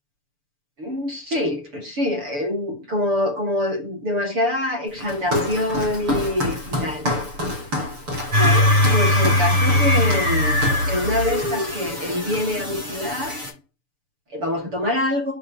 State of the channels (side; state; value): left; late; 6.9 ms